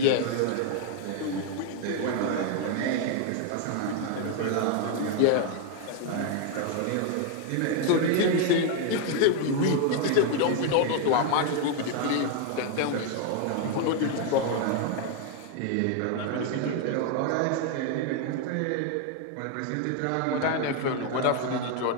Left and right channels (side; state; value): both; different; correlation 0.01